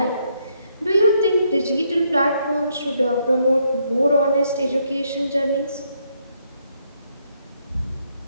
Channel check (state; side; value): inverted; both; correlation -0.74